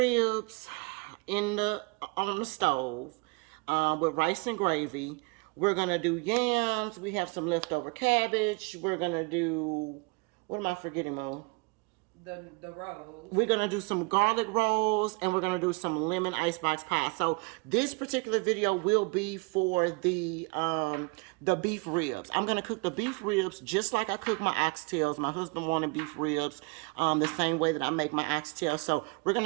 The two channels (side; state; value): left; quieter; 29.4 dB